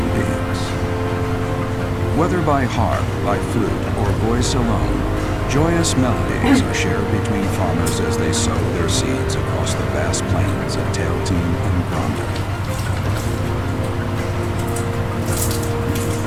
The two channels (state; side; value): identical; both; correlation 1.00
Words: beings. Whether by harp, by flute, or voice alone, joyous melodies are shared between farmers as they sow their seeds across the vast plains of Tailteam and Granda.